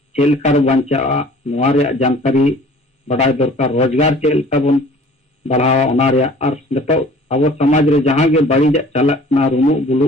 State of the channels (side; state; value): both; normal; correlation 0.49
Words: चेक लेका बांचा नवा रे जानकारी बड़ाई दरकार रोजगार चेक लेका बन बढ़ावा ओना रे और नेतो अब समाज रे जहां गे बाड़ी चलक ना रुमु बुलु